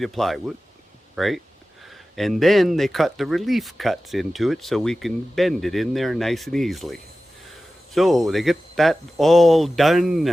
of plywood, right? And then they cut the relief cuts into it so we can bend it in there nice and easily. So they get that all done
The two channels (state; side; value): normal; both; correlation 0.95